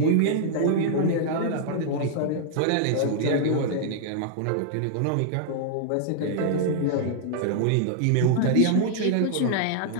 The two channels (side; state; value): both; different; correlation -0.01